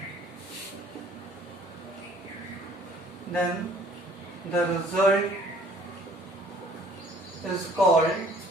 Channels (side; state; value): both; normal; correlation 0.56